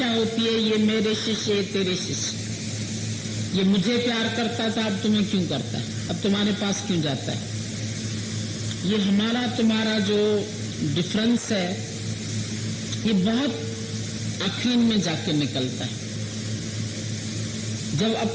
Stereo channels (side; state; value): both; identical; correlation 1.00